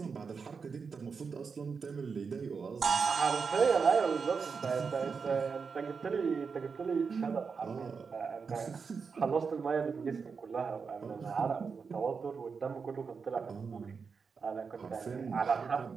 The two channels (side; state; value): left; quieter; 5.5 dB